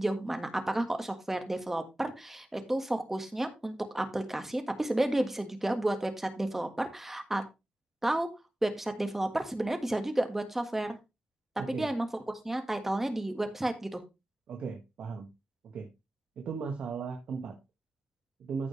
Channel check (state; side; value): normal; both; correlation 0.96